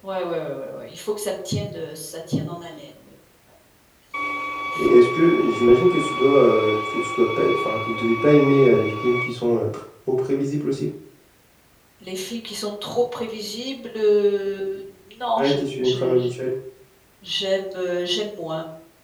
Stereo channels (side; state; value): both; identical; correlation 1.00